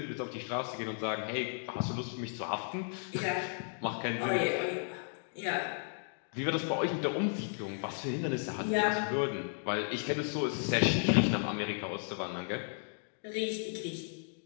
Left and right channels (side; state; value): right; silent; 55 dB below the other